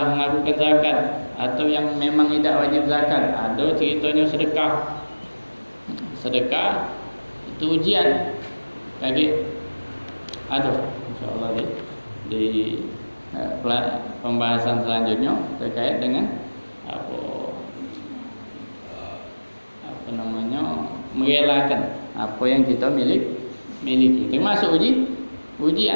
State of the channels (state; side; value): inverted; both; correlation -1.00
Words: melakukan zakat, atau yang memang tidak wajib zakat, ada ceritanya sedekah itu ujian. Lagi ada insyaallah di pembahasan selanjutnya terkait dengan apa merelakan apa yang kita miliki, termasuk